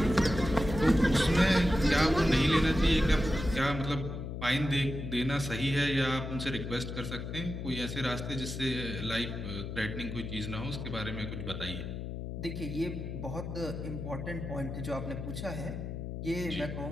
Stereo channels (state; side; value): noise; left; hum, 6 dB below the sound